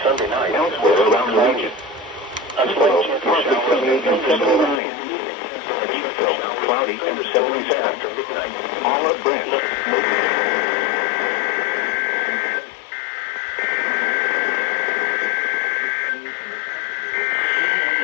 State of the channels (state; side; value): drops out; right; at 4.8 s